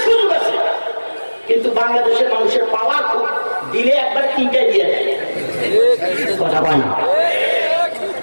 সুযোগ আছে, কিন্তু বাংলাদেশের মানুষের পাওয়ার খুব, দিলে একবার 3টাই দিয়ে দেয়। কথা বলে না।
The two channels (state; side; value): inverted; both; correlation -1.00